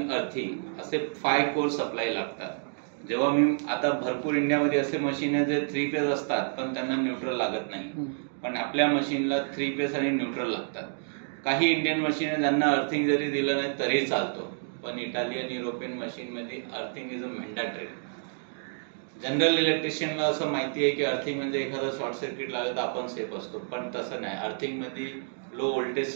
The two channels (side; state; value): left; silent; digital silence